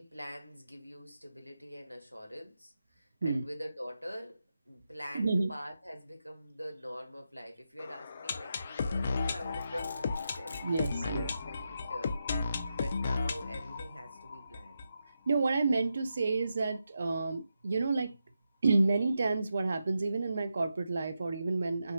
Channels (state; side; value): inverted; both; correlation -0.87